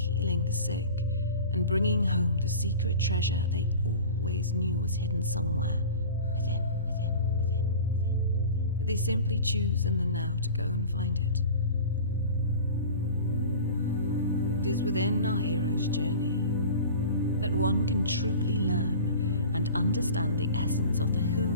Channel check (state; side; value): inverted; both; correlation -0.38